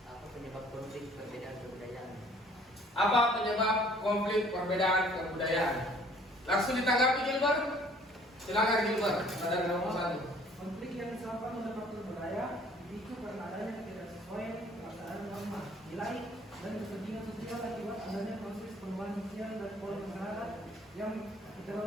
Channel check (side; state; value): both; normal; correlation 0.56